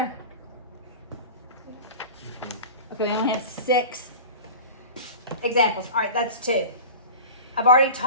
Okay, we only have 6 examples. All right, that's 2. I've already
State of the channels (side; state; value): both; inverted; correlation -0.34